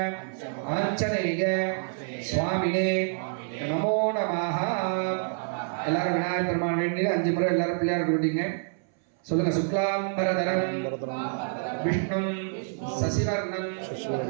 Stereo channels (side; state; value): left; silent; 60 dB below the other